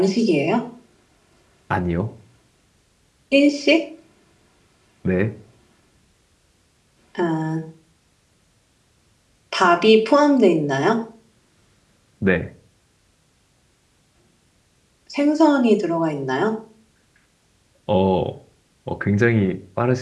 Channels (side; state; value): both; identical; correlation 1.00